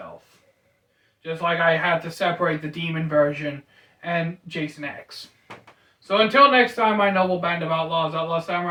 Just like I had to separate the demon version and Jason X. So until next time, my noble band of outlaws, Outlaw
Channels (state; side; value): identical; both; correlation 1.00